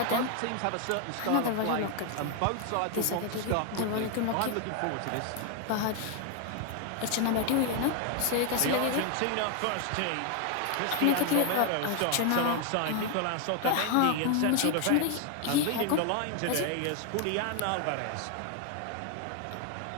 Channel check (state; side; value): different; both; correlation 0.00